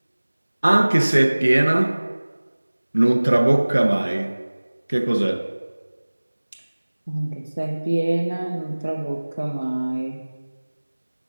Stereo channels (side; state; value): both; inverted; correlation -1.00